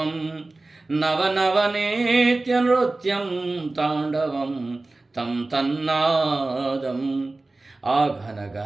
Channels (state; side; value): quieter; left; 3.1 dB